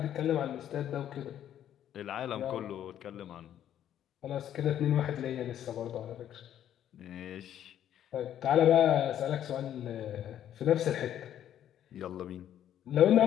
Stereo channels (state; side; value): quieter; right; 10.7 dB